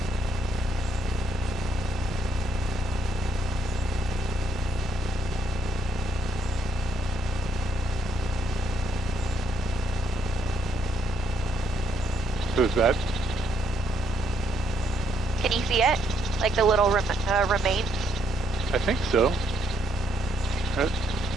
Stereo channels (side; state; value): both; normal; correlation 0.72